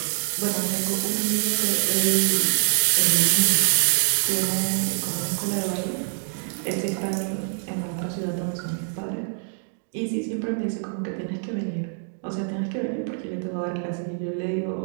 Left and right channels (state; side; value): silent; left; digital silence